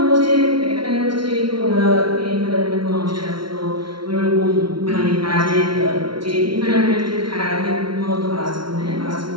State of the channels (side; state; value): left; late; 0.73 ms